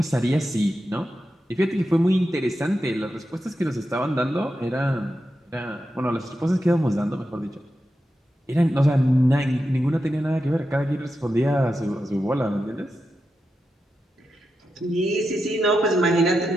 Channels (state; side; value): normal; both; correlation 0.89